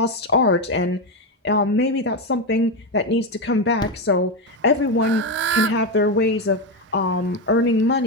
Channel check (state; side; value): normal; both; correlation 0.11